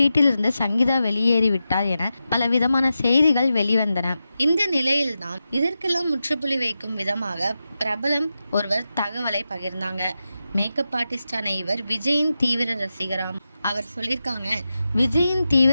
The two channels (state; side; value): inverted; both; correlation -0.91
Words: சங்கீதா வெளியேறிவிட்டார் என பல விதமான செய்திகள் வெளிவந்தன. இந்த நிலையில்தான் இதற்கெல்லாம் முற்றுப்புள்ளி வைக்கும் விதமாக பிரபலம் ஒருவர் தகவலை பகிர்ந்தாங்க. மேக்கப் ஆர்டிஸ்டான இவர் விஜயின் தீவிர ரசிகராம். அவர் சொல்லியிருக்காங்க, விஜயின்